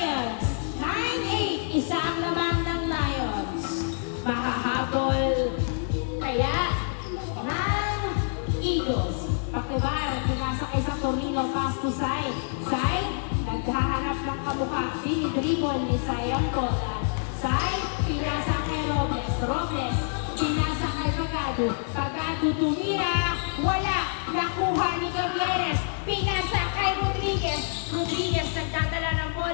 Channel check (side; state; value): right; silent; digital silence